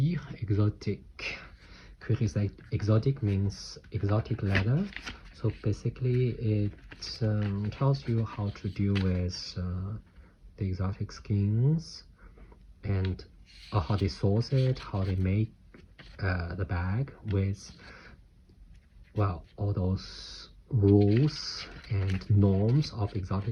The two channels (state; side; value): identical; both; correlation 1.00